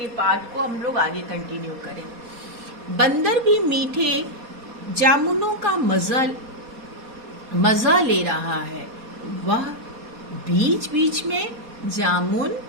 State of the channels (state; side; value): late; left; 4.2 ms